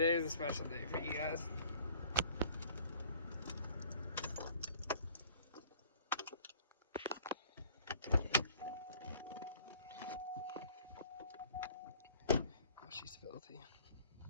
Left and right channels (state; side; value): inverted; both; correlation -0.53